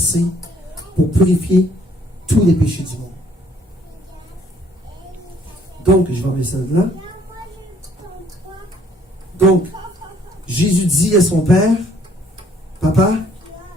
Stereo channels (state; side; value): normal; both; correlation 0.62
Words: pour purifier tous les péchés du monde. Donc, je vais enlever ça de là. Donc, Jésus dit à son Père, Papa,